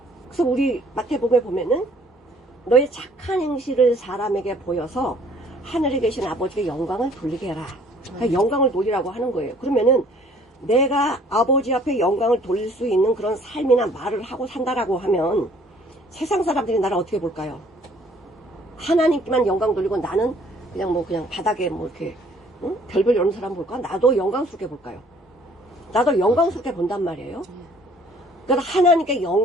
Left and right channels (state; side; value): normal; both; correlation 0.58